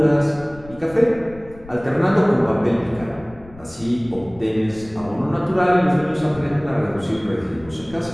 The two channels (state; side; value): noise; left; rumble, 20 dB below the sound